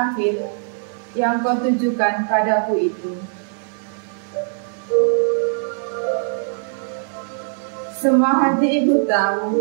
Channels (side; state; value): left; silent; 65 dB below the other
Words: yang kau tujukan padaku itu. Semua hati ibu tahu